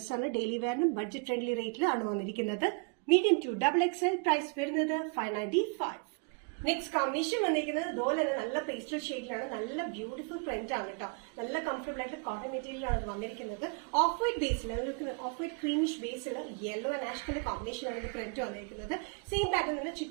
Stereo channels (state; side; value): quieter; left; 35.4 dB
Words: ഡെയിലി വെയറിനും ബഡ്ജറ്റ് ഫ്രണ്ട്ലി റേറ്റിലാണ് വന്നിരിക്കുന്നത്. Medium to XXL. പ്രൈസ് വരുന്നത് 595. നെക്സ്റ്റ് കോമ്പിനേഷൻ വന്നിരിക്കുന്നത് ഇതുപോലെ തന്നെ നല്ല പേസ്റ്റൽ ഷെയ്ഡിലാണ്. നല്ല ബ്യൂട്ടിഫുൾ പ്രിന്റ് ആണ് കേട്ടോ. നല്ല കംഫർട്ടബിൾ ആയിട്ട് കോട്ടൺ മെറ്റീരിയലാണ് വന്നിരിക്കുന്നത്. Of white Basil of white creamish Basil yellow and ash colour combination ആണ് പ്രിന്റ് വന്നിരിക്കുന്നത്. സെയിം പാറ്റേൺ തന്നെ